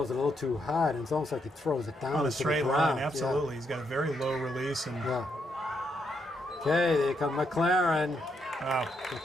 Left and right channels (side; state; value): both; normal; correlation 0.78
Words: it a little too hard, and it's almost like he throws it down On a into straight the line, ground. absolutely. He's got a very low release. And Yeah. Okay, there come McLaren. wow.